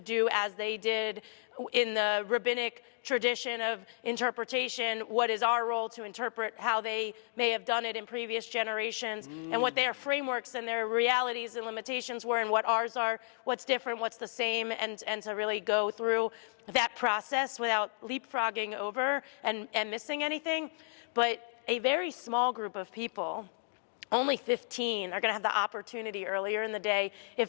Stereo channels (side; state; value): right; silent; digital silence